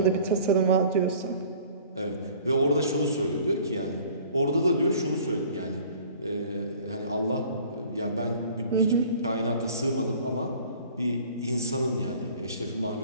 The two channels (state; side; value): inverted; both; correlation -0.49